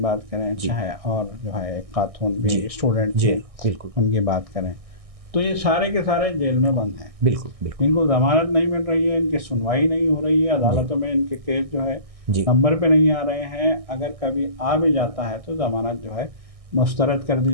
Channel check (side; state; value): left; late; 1.6 ms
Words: کریں، جی، چاہے اور جو ہے ایک خاتون بھی جی، اسٹوڈنٹ جی، تھے، بالکل، ان کی بات کریں، تو یہ سارے کے سارے جیل میں بند ہیں۔ بالکل، بالکل، ان کو ضمانت نہیں مل رہی ہے، ان کی سنوائی نہیں ہو رہی ہے، عدالتوں میں ان کے کیس جو ہے جی، نمبر پہ نہیں آ رہے ہیں، اگر کبھی آ بھی جاتا ہے تو ضمانت جو ہے مسترد کر